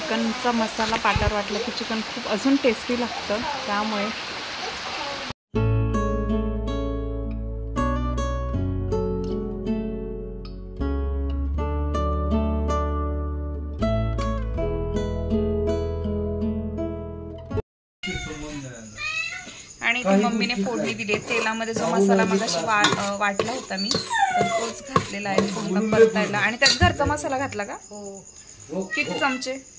मसाला पाट्यावर वाटला की चिकन खूप अजून टेस्टी लागतं. त्यामुळे आणि इथे मम्मीने फोडणी दिली. तेलामध्ये जो मसाला मगाशी वाटला होता मी, तर तोच घातलेला आहे फोडणं परतायला. आणि त्यात घरचा मसाला घातला का? किती चमचे?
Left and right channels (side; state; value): both; identical; correlation 1.00